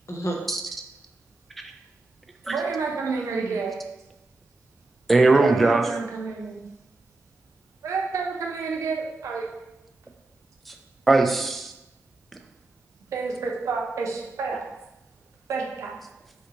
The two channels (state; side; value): quieter; left; 3.2 dB